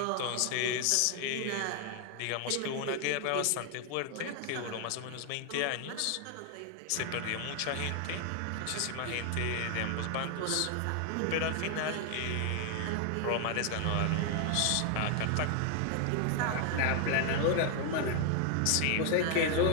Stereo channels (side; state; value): both; different; correlation 0.00